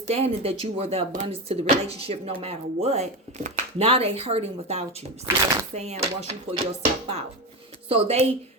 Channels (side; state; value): both; normal; correlation 0.18